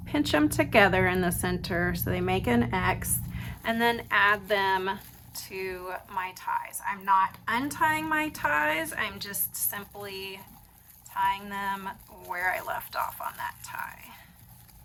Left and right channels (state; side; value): identical; both; correlation 1.00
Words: pinch them together in the center so they make an X, and then add them to my ties. I'm not untying my ties, I'm just simply tying them where I left off on that tie.